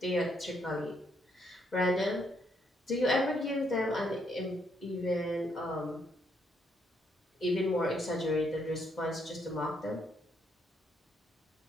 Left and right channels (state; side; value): normal; both; correlation 0.73